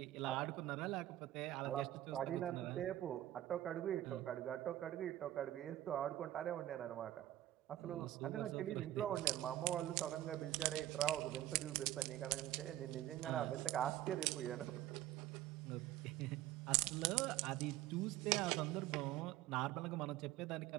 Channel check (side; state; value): left; quieter; 13.9 dB